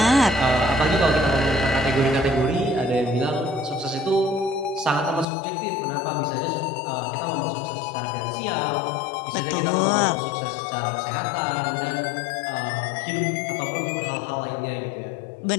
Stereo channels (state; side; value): drops out; right; at 5.2 s